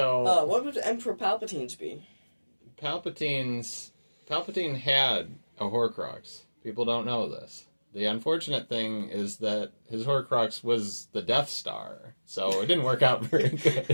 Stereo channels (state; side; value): inverted; both; correlation -1.00